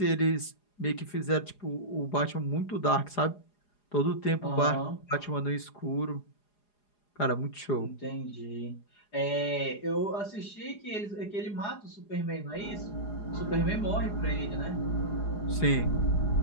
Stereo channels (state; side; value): late; right; 4.9 ms